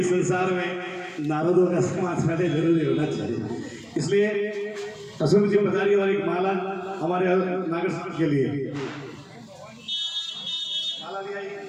संसार में नारदों का समाज पहले जरूरी होना चाहिए। इसलिए अशोक जी पधारी और एक माला हमारे नागर साहब के लिए। माला ले आइए।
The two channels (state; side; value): identical; both; correlation 1.00